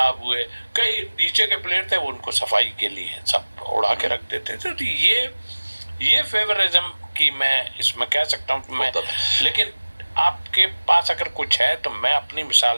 हुए, कई नीचे के प्लेयर थे वो उनको सफाई के लिए सब उड़ा के रख देते थे। तो ये फेवरिज्म की मैं इसमें कह सकता हूँ मैं, लेकिन आपके पास अगर कुछ है तो मैं अपनी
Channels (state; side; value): inverted; both; correlation -1.00